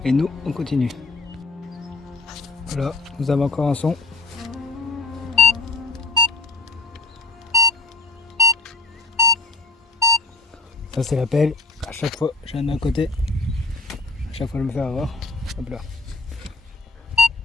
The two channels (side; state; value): right; quieter; 3.0 dB